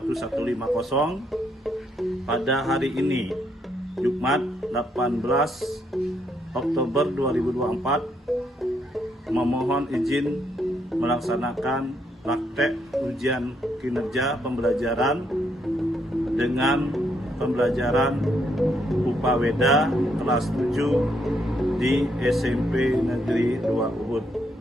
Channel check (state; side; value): normal; both; correlation 0.74